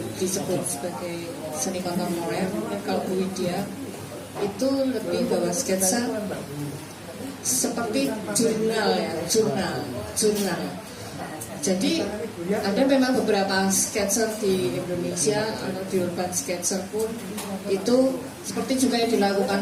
disebut sebagai seni kontemporer. Kalau Bu Widya itu lebih bahwa sketsa seperti jurnal. Jadi ada memang beberapa sketser di Indonesia atau di urban sketser pun itu seperti juga yang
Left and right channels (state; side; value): identical; both; correlation 1.00